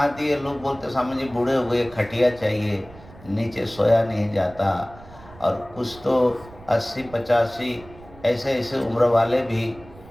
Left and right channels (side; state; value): right; noise; rumble, 20 dB below the sound